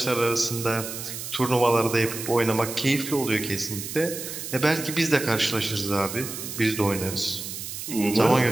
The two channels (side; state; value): right; noise; hiss, 8 dB below the sound